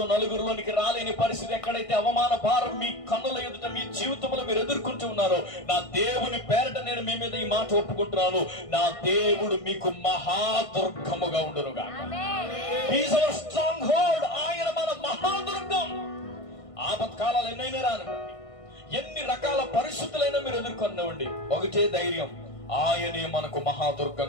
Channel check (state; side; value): late; right; 1.5 ms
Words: నలుగురిలోనికి రాలేని పరిస్థితి, ఎక్కడైతే అవమాన భారం మీ కన్నుల ఎదుట మీ జీవితంలో మీరు ఎదుర్కొంటూ ఉన్నారో, నా దేవుని పేరట నేను మీ మీద ఈ మాట ఒప్పుకుంటున్నాను, నా దేవుడు మీకు మహాదుర్గముగా ఉండును గాక. He's hour strong hold. ఆయన మన మహాదుర్గం. ఆపత్కాలాలు ఎన్నైనా రానివ్వండి, ఎన్ని రకాల పరిస్థితులైనా మీరు ఎదుర్కొనివ్వండి, ఒకటే ధైర్యం, ఆయనే మనకు